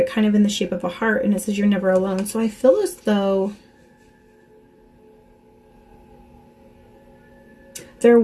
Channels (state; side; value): identical; both; correlation 1.00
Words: kind of in the shape of a heart, and it says you're never alone. So I feel as though there